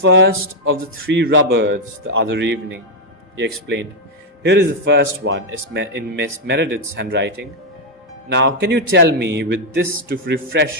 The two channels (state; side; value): normal; both; correlation 0.01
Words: of the 3 Roberts the other evening," he explained. "Here is the first one, in Miss Meredith's handwriting. Now, can you tell me, with this to